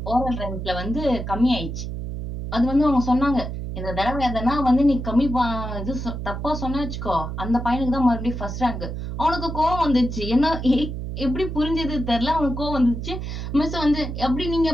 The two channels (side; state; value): right; noise; hum, 6 dB below the sound